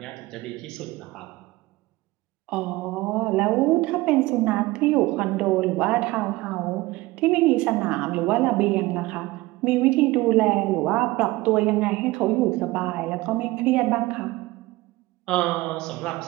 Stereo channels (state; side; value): quieter; left; 19.9 dB